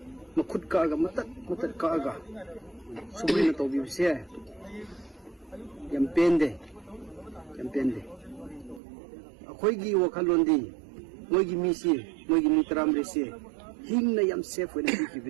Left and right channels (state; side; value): drops out; left; at 8.8 s